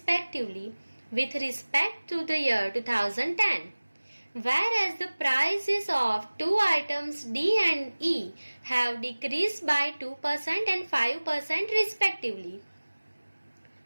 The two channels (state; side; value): inverted; both; correlation -1.00